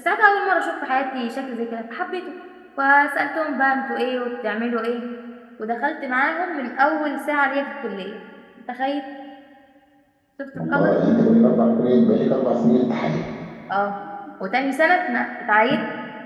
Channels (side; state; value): both; identical; correlation 1.00